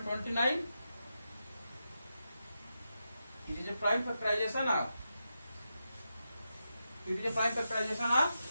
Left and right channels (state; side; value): inverted; both; correlation -0.88